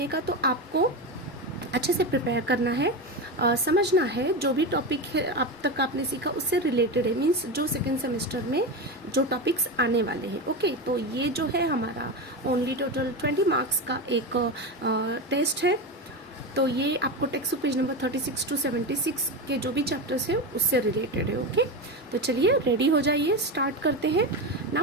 का। तो आपको अच्छे से प्रिपेयर करना है, समझना है जो भी टॉपिक है अब तक आपने सीखा उससे रिलेटेड है, मीन्स जो सेकेंड सेमेस्टर में जो टॉपिक्स आने वाले हैं। ओके, तो ये जो है हमारा ओनली टोटल 20 मार्क्स का एक टेस्ट है। तो ये आपको text book page number 36 to 76 के जो भी चैप्टर्स हैं उससे रिलेटेड है। ओके, तो चलिए रेडी हो जाइए, स्टार्ट करते हैं।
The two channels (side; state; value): both; normal; correlation 0.18